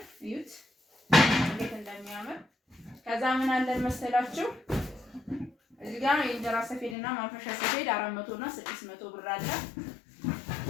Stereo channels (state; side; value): drops out; right; at 7.0 s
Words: እዩት እንዴት እንደሚያምር። ከዛ ምን አለን መሰላችሁ? እዚህ ጋር የእንጀራ ሰፌድና ማንፈሻ ሰፌድ 400 እና 600 ብር አለ።